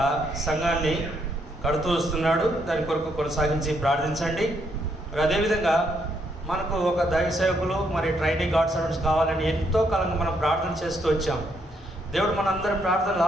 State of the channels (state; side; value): normal; both; correlation 0.74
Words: సంఘాన్ని కడుతూ వస్తున్నాడు. దాని కొరకు కొనసాగించి ప్రార్థించండి. మరి అదేవిధంగా మనకు ఒక దైవ సేవకులు మరి ట్రైనింగ్ గాడ్ సర్వెంట్స్ కావాలని ఎంతో కాలంగా మనం ప్రార్థన చేస్తూ వచ్చాం. దేవుడు మనందరి ప్రార్థనలు